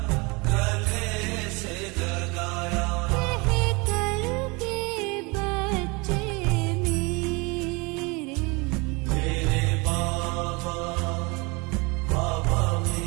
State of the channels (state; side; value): quieter; left; 27.5 dB